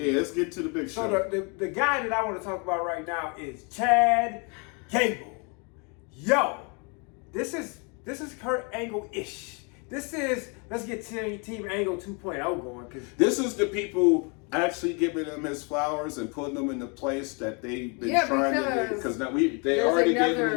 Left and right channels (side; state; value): right; quieter; 33.8 dB